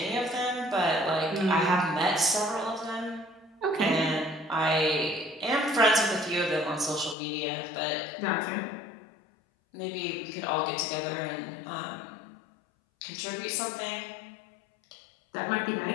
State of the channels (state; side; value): drops out; right; at 7.2 s